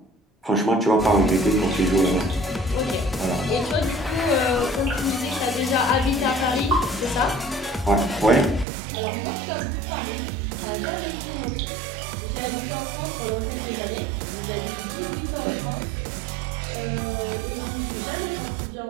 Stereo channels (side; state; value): left; drops out; at 8.7 s